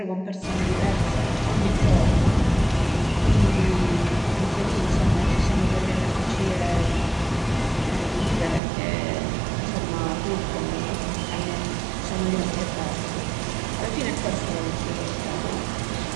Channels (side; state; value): left; drops out; at 8.6 s